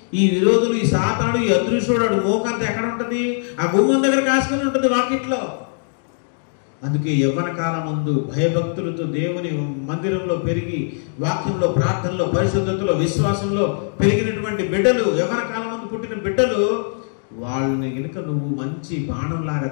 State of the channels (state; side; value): silent; right; digital silence